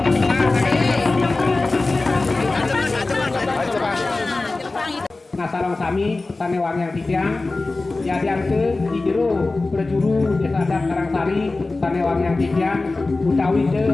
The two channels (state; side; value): quieter; right; 3.3 dB